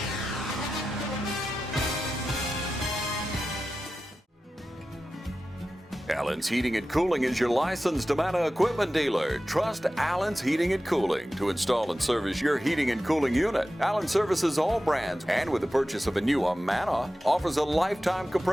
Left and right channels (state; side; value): normal; both; correlation 0.93